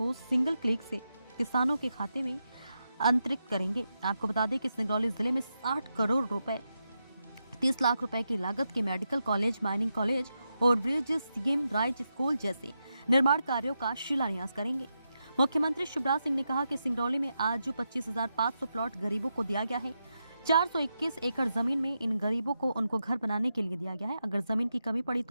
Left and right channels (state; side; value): inverted; both; correlation -0.86